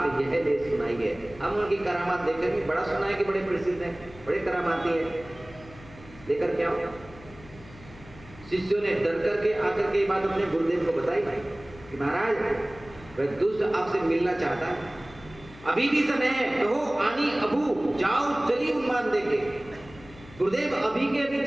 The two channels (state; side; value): noise; left; hum, 20 dB below the sound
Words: यह ले सुनाई है, हम उनकी करामात देखेंगे। बड़ा सुना है कि बड़े प्रसिद्ध हैं, बड़े करामाती हैं, लेकर के आओ। शिष्यों ने डर करके आकर के बात अपने गुरुदेव को बताई कि महाराज वह दुष्ट आपसे मिलना चाहता है, अभी भी समय है, कहो आनी अबू जाओ चली उन्मान देंगे। गुरुदेव अभी के अभी